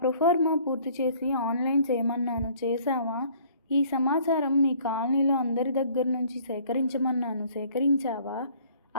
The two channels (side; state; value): both; inverted; correlation -0.56